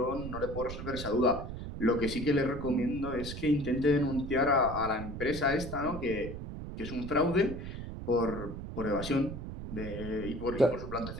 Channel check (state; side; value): noise; right; rumble, 8 dB below the sound